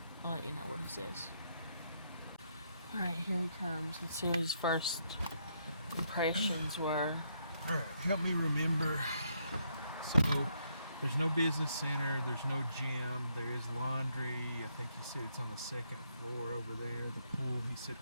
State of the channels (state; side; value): inverted; both; correlation -0.75